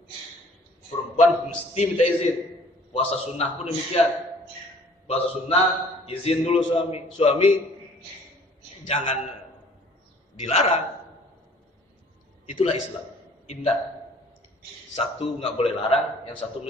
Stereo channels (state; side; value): normal; both; correlation 0.54